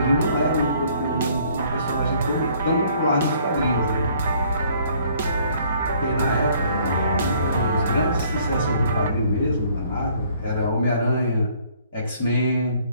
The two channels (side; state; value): both; inverted; correlation -0.61